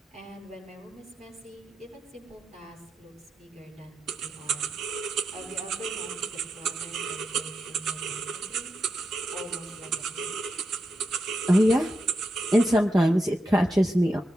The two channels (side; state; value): both; normal; correlation 0.87